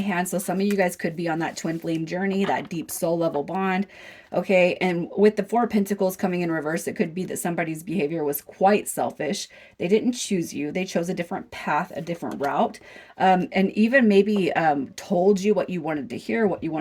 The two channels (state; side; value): identical; both; correlation 1.00